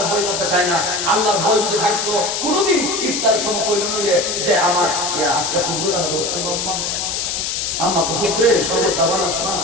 ভয় করতে চায় না। আল্লাহর ভয় যদি থাকতো কোনোদিন ইফতারের সময় কইল নিলে যে আমার আজকে কুকুর কাটা দোষ আম্মা কুকুরে সবর দাবান আছে না,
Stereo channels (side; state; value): left; noise; hiss, 1 dB below the sound